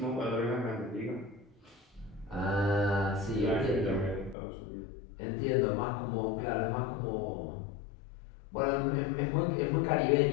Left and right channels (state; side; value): drops out; right; at 4.4 s